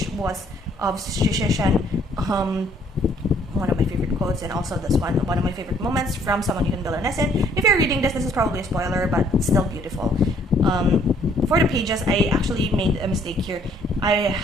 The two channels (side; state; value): both; normal; correlation 0.63